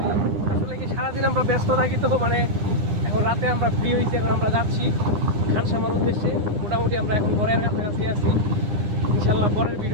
আসলে কি সারাদিন আমরা ব্যস্ত থাকি, তো মানে এখন রাতে আমরা ফ্রি হয়েছি, এখন আমরা যাচ্ছি খানসামার উদ্দেশ্যে। মোটামুটি আমরা এখন ঘরের কাছাকাছি আছি। ইনশাল্লাহ পরের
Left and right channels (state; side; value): late; left; 9.9 ms